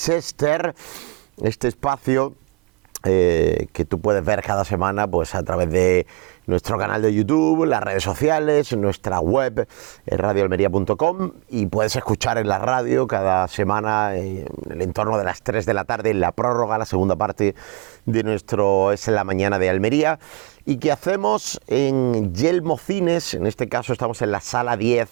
este espacio que tú puedes ver cada semana pues a través de nuestro canal de YouTube, las redes sociales, nuestra web, radioalmería.com, y puedes escuchar en la radio cada semana en el entorno de las 3 de la tarde, en la prórroga, la segunda parte de nuestro Es en la Mañana de Almería, y que hacemos en Yelmo Cines. En este caso estamos en la sala 10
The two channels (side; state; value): left; quieter; 26.7 dB